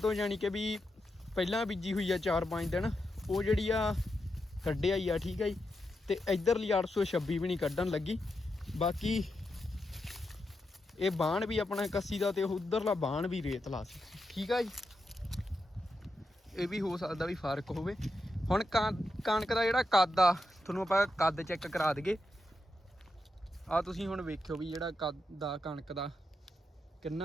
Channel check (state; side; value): normal; both; correlation 0.86